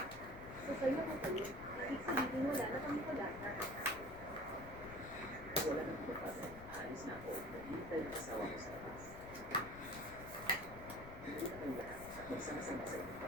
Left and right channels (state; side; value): noise; left; rumble, 13 dB below the sound